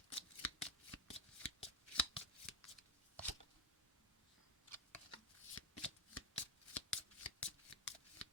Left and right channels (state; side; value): normal; both; correlation 0.08